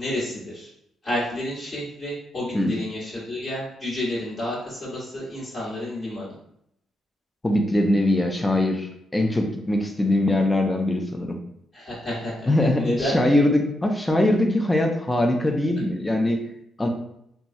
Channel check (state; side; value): normal; both; correlation 0.84